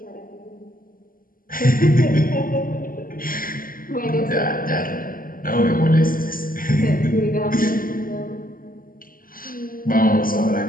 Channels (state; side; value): late; right; 0.41 ms